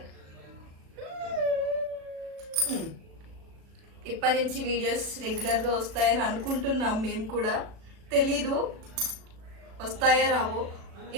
ఇప్పటి నుంచి వీడియోస్ రెగ్యులర్గా వస్తాయని అనుకుంటున్నాం. మేము కూడా తెలీదు వస్తాయా రావో.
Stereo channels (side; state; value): left; late; 36 ms